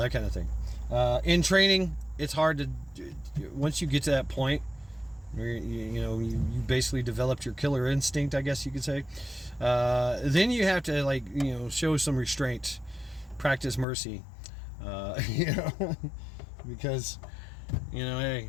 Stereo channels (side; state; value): right; drops out; at 13.9 s